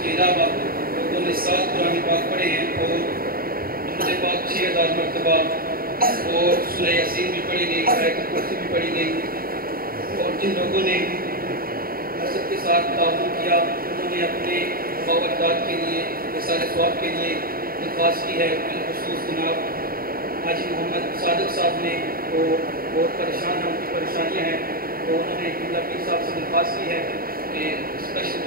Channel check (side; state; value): left; late; 0.43 ms